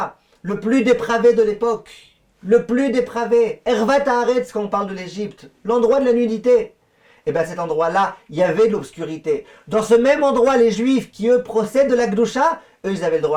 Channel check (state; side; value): identical; both; correlation 1.00